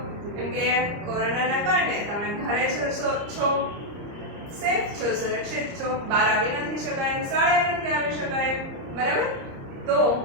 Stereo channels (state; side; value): late; left; 30 ms